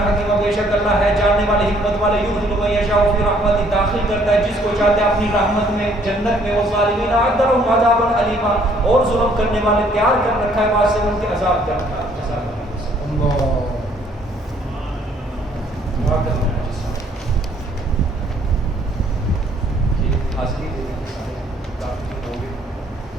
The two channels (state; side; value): normal; both; correlation 0.63